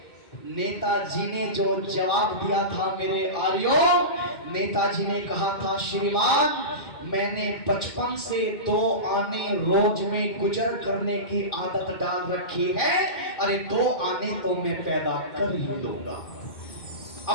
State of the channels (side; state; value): right; late; 2.1 ms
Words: नेताजी ने जो जवाब दिया था मेरे आर्यों, नेताजी ने कहा था, श्रीमान, मैंने बचपन से 2 आने रोज में गुजर करने की आदत डाल रखी है। अरे 2 आने तो मैं पैदा कर ही लूंगा